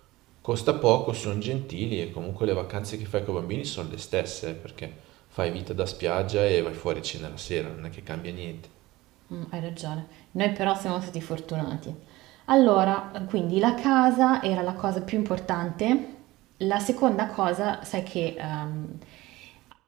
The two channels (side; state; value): left; quieter; 19.0 dB